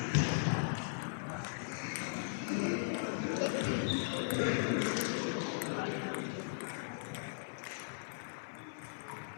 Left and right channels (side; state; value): right; silent; 52 dB below the other